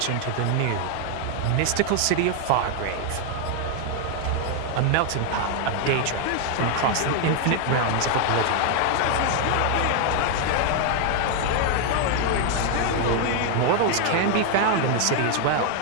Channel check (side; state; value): both; different; correlation 0.00